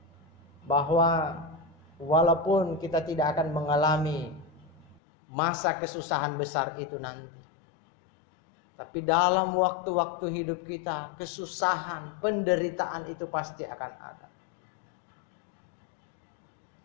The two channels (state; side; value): drops out; right; at 5.0 s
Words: Bahwa walaupun kita tidak akan mengalami masa kesusahan besar itu nanti, tapi dalam waktu-waktu hidup kita, kesusahan, penderitaan itu pasti akan ada.